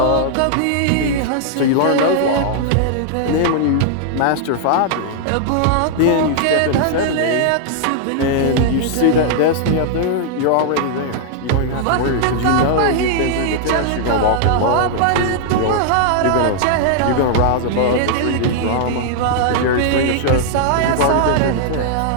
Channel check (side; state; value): both; different; correlation -0.01